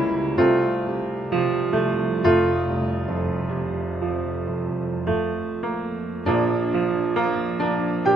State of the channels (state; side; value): normal; both; correlation 0.78